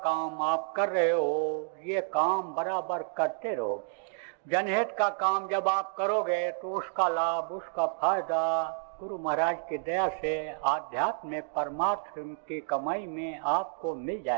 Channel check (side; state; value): left; silent; digital silence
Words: काम आप कर रहे हो, ये काम बराबर करते रहो। जनहित का काम जब आप करोगे तो उसका लाभ, उसका फायदा गुरु महाराज की दया से आध्यात्म में परमात्मा की कमाई में आपको मिल